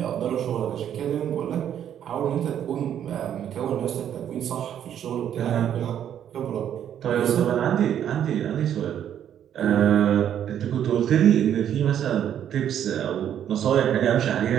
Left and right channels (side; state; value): left; quieter; 9.9 dB